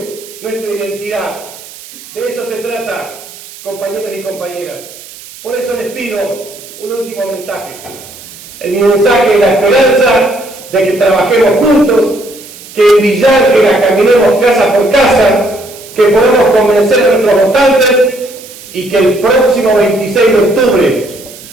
nuestra identidad. De eso se trata, compañeros y compañeras. Por eso les pido un último mensaje. El mensaje de la esperanza de que trabajemos juntos, que en Villa Ángela caminemos casa por casa, que podamos convencer a nuestros votantes y que el próximo 26 de octubre,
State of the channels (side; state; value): right; noise; hiss, 18 dB below the sound